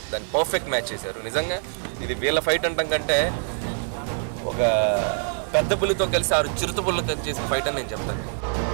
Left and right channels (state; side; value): silent; left; 62 dB below the other